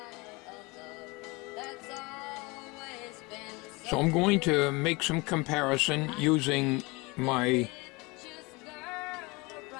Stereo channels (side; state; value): right; quieter; 25.4 dB